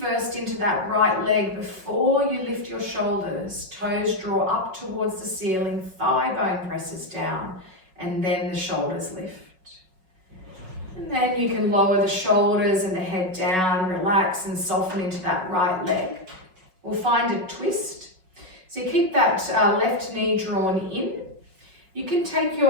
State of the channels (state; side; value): late; left; 5.4 ms